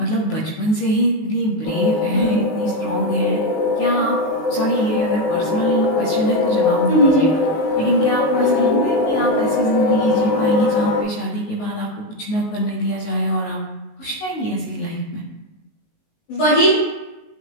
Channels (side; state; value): right; late; 19 ms